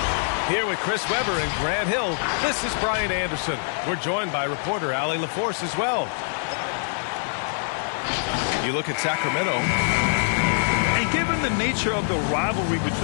Here with Chris Webber and Grant Hill, this is Brian Anderson. We're joined by reporter Allie LaForce as well. You look at Sacramento. And given the nature of the rivalry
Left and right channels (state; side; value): silent; right; digital silence